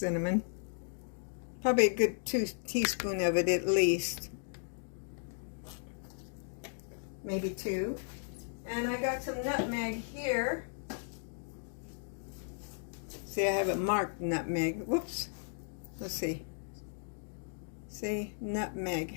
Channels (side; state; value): right; silent; digital silence